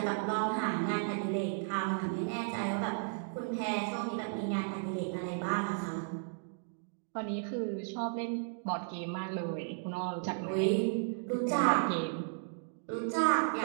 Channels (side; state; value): left; silent; digital silence